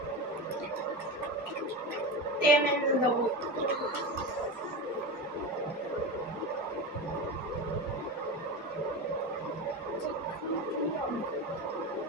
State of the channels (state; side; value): normal; both; correlation 0.23